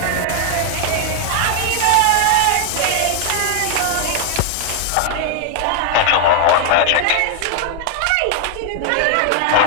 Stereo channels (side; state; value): both; different; correlation 0.00